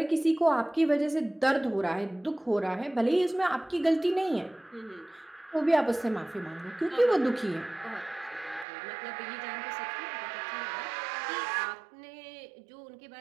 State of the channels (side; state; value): left; drops out; at 8.7 s